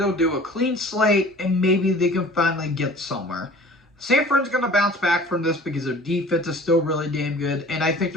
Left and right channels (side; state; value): both; normal; correlation 0.46